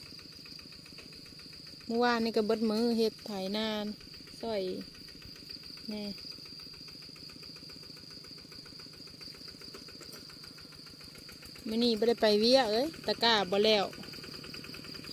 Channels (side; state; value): both; identical; correlation 1.00